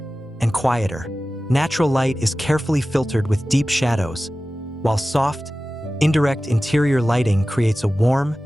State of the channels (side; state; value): both; normal; correlation 0.96